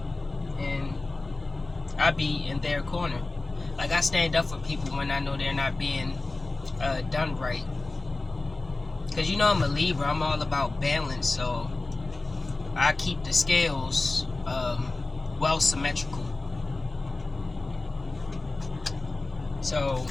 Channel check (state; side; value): quieter; right; 3.3 dB